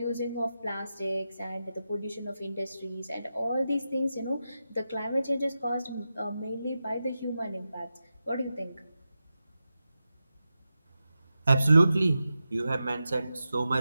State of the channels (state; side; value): inverted; both; correlation -0.91